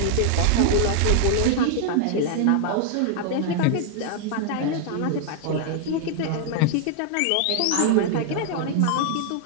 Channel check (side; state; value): both; different; correlation 0.00